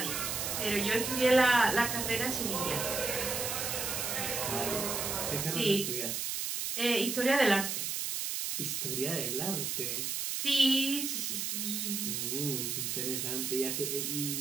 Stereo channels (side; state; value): right; noise; hiss, 2 dB below the sound